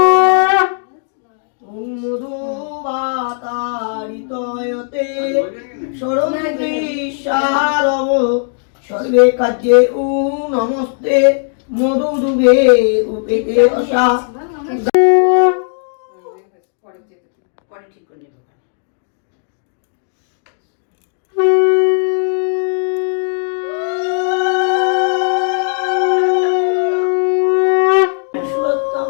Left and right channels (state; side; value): silent; right; digital silence